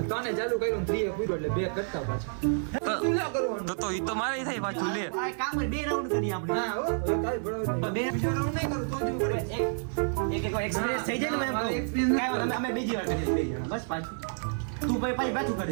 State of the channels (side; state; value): left; silent; 58 dB below the other